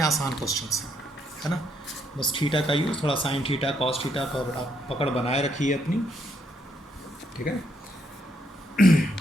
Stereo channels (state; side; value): normal; both; correlation 0.74